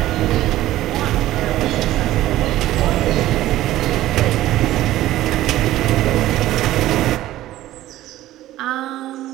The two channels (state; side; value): quieter; left; 14.9 dB